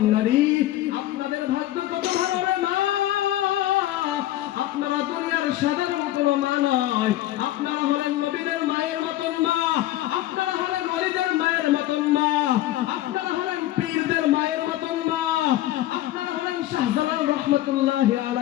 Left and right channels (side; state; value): right; quieter; 14.8 dB